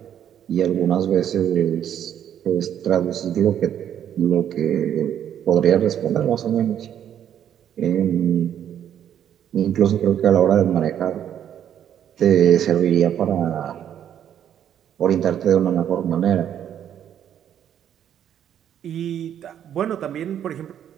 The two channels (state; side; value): quieter; left; 9.8 dB